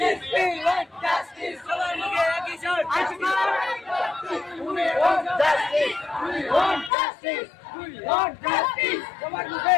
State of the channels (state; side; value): drops out; right; at 6.9 s